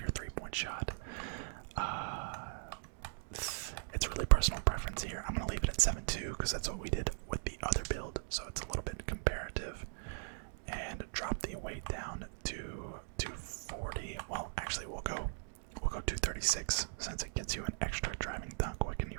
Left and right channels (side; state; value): left; silent; digital silence